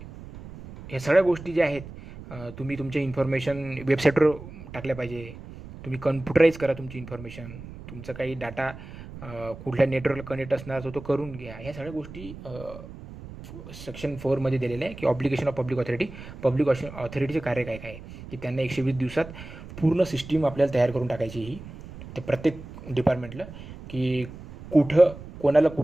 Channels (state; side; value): noise; right; rumble, 14 dB below the sound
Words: हे सगळ्या गोष्टी ज्या आहेत तुम्ही तुमच्या इन्फॉर्मेशन वेबसाईटवर टाकल्या पाहिजे, तुम्ही कम्प्युटराईज करा तुमची इन्फॉर्मेशन, तुमचा काही डाटा कुठल्या नेटवर्कला कनेक्ट असणार तो करून घ्या. ह्या सगळ्या गोष्टी सेक्शन 4मध्ये दिलेलं आहे की obligation of public authority. Public ऑथॉरिटीचे कार्य काय काय आहे की त्यांना 120 दिवसात पूर्ण सिस्टीम आपल्याला तयार करून टाकायची ही, तर प्रत्येक डिपार्टमेंटला की कुठं कोणाला